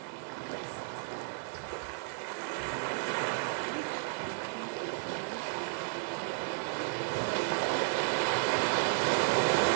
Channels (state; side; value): silent; left; 56 dB below the other